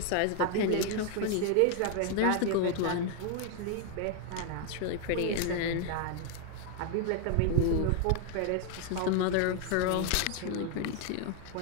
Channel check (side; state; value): both; different; correlation 0.00